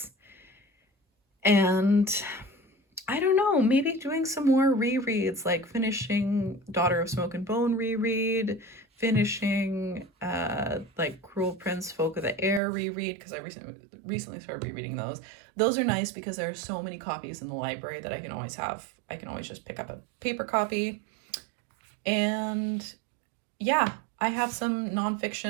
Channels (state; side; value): drops out; left; at 12.6 s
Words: And I don't know, maybe doing some more rereads, like finishing Daughter of Smoke and Bone reread, finishing like Cruel Prince, Folk of the Air reread, because I recently started rereading those. Those are nice because there are so many copies in the library that I can always have. I can always just pick up a paper copy. And yeah, I have some